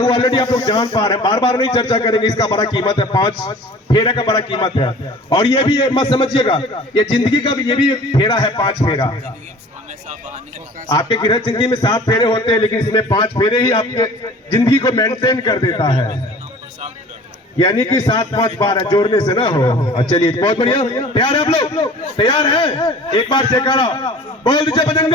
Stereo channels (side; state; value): both; normal; correlation 0.45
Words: वो ऑलरेडी आप लोग जान पा रहे हैं, बार बार नहीं चर्चा करेंगे। इसका बड़ा कीमत है, 5 फेरे का बड़ा कीमत है। और ये भी मत समझिएगा, ये जिंदगी का भी ये भी फेरा है, 5 फेरा। आपके गृह जिंदगी में 7 फेरे होते हैं, लेकिन इसमें 5 फेरे ही आपके जिंदगी को मेंटेन कर देता है। यानी कि 7-5 12 जोड़ने से ना हो। चलिए, बहुत बढ़िया। तैयार है आप लोग? तैयार है? एक बार जयकारा बोल दीजिए